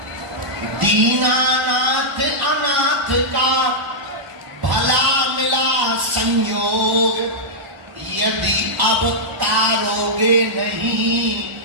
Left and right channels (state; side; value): late; left; 1.0 ms